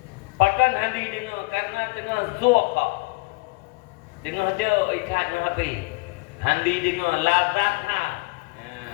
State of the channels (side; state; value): right; quieter; 26.8 dB